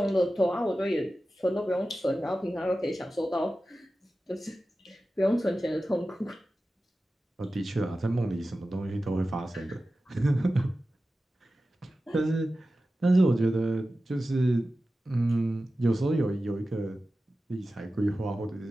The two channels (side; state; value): both; normal; correlation 0.94